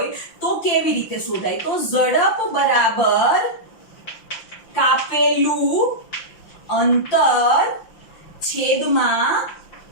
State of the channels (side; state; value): right; late; 5.9 ms